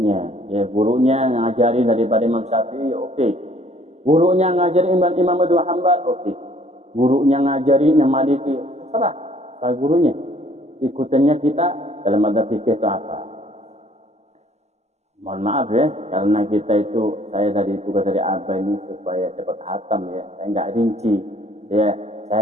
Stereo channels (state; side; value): late; left; 0.33 ms